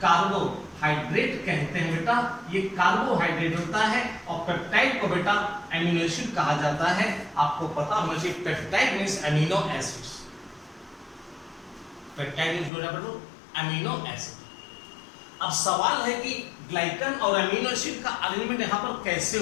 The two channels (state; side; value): drops out; right; at 12.7 s